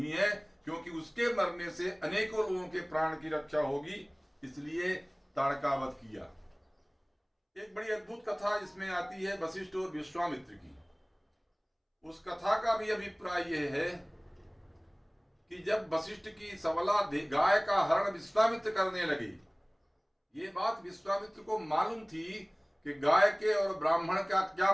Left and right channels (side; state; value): both; identical; correlation 1.00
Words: है, क्योंकि उसके मरने से अनेकों लोगों के प्राण की रक्षा होगी। इसलिए ताड़का वध किया। एक बड़ी अद्भुत कथा इसमें आती है वशिष्ठ और विश्वामित्र की। उस कथा का भी अभिप्राय यह है कि जब वशिष्ठ की सबला गाय का हरण विश्वामित्र करने लगे, ये बात विश्वामित्र को मालूम थी कि गाय के और ब्राह्मण का क्या